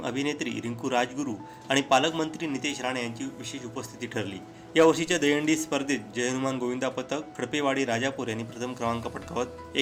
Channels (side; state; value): both; identical; correlation 1.00